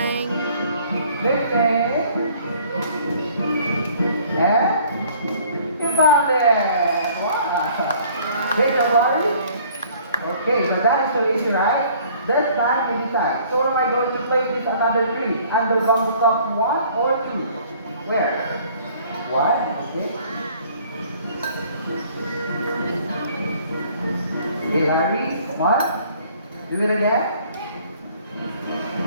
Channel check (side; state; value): both; inverted; correlation -0.56